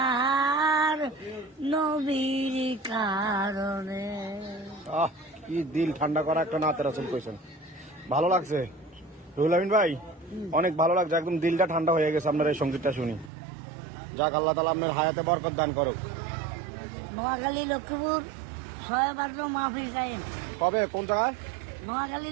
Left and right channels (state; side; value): drops out; left; at 13.3 s